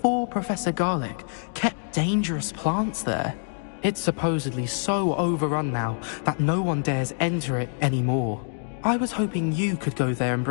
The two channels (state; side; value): silent; right; digital silence